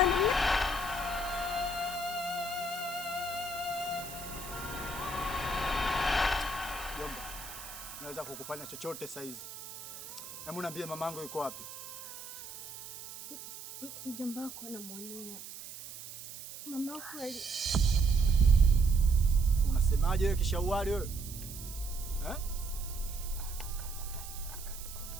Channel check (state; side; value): noise; right; hiss, 12 dB below the sound